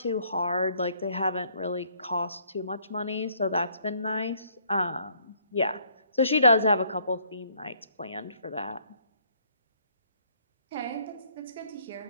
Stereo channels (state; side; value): inverted; both; correlation -0.65